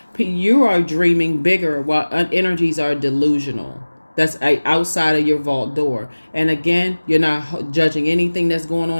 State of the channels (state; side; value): inverted; both; correlation -1.00